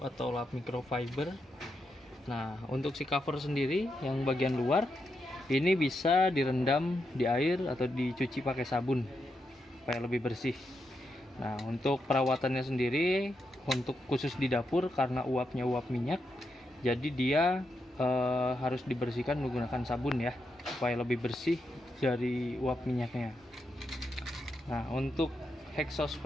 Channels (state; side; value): normal; both; correlation 0.84